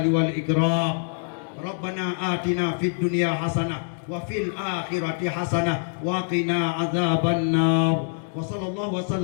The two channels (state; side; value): silent; right; digital silence